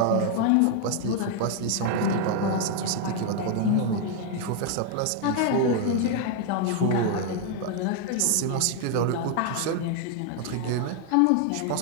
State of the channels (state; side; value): different; both; correlation 0.00